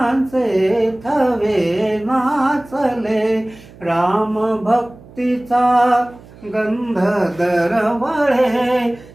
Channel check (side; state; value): right; noise; hum, 22 dB below the sound